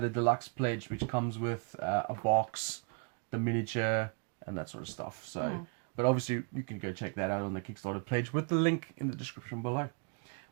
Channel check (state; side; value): quieter; left; 37.6 dB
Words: deluxe pledge, which comes with a box, the miniature, and that sort of stuff. So, but obviously you can go check that out on the Kickstarter pledge with the link in the description below.